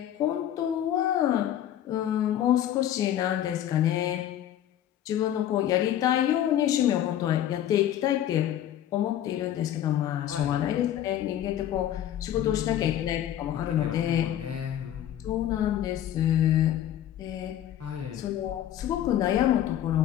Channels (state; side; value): quieter; right; 11.4 dB